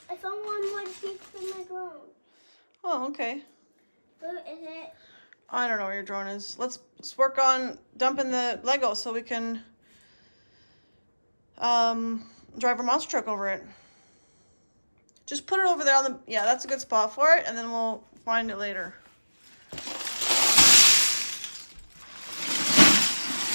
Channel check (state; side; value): inverted; both; correlation -1.00